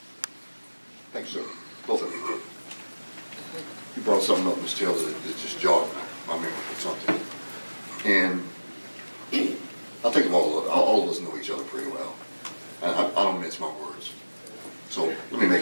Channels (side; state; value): both; inverted; correlation -1.00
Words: Thank you, sir. Both of you. You brought something up, Ms. Taylor, that just jogged my memory or something. And I think all of us know each other pretty well. And I don't mince my words. So let me